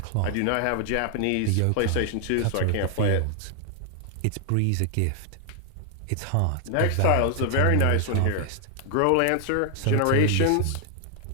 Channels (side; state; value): both; different; correlation 0.00